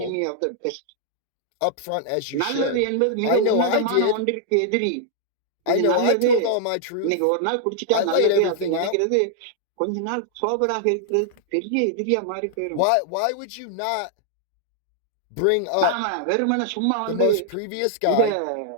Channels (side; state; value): both; different; correlation 0.00